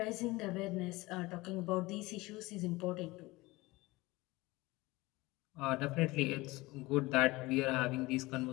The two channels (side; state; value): right; quieter; 21.2 dB